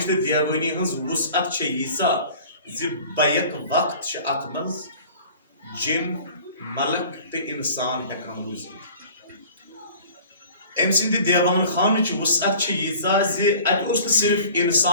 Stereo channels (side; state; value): both; inverted; correlation -0.46